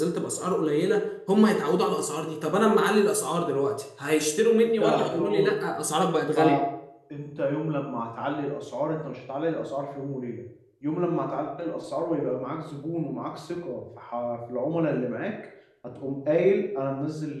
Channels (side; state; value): both; identical; correlation 1.00